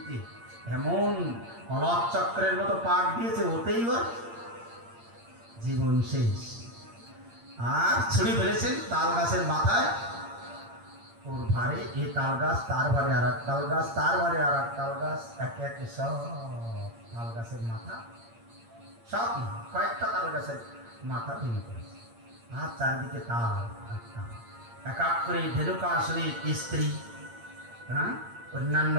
এমন অলক চক্রের মতো পাক দিয়েছে, ওতেই ওর জীবন শেষ। আর ছুরি ফেলেছেন তাল গাছের মাথায়, ওর ভারে এই তাল গাছ, তার ভারে আর এক তাল গাছ, তার ভারে আর এক তাল গাছ, একে একে সব তাল গাছের মাথা, সব না কয়েকটা তাল গাছের মাথা ভেঙে পড়েছে। আর চারিদিকে তাল এক এক করে ধেনুকাসুরের স্ত্রী, হ্যাঁ, অন্যান্য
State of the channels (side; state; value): left; late; 8.7 ms